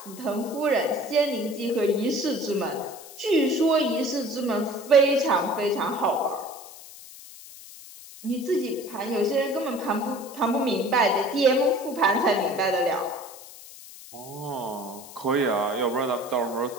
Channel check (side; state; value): left; noise; hiss, 17 dB below the sound